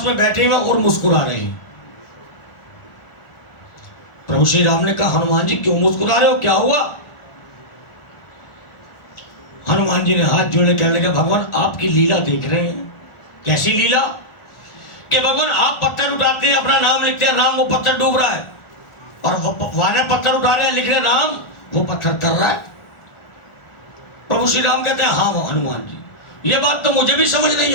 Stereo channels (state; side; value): late; right; 1.4 ms